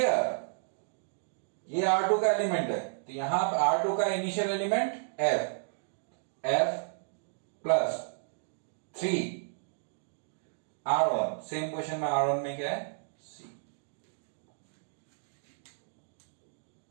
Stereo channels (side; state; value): left; silent; digital silence